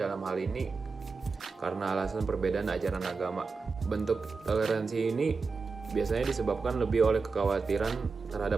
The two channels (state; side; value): quieter; left; 4.5 dB